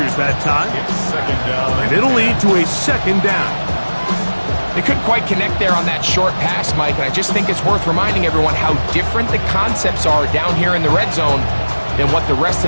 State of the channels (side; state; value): both; inverted; correlation -1.00